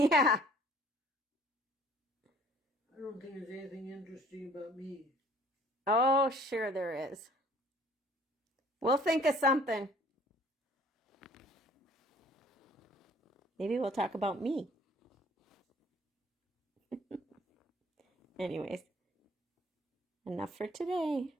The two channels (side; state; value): both; normal; correlation 0.54